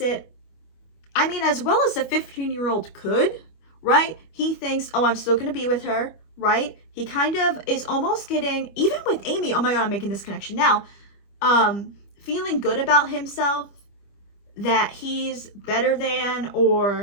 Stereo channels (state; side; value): late; right; 25 ms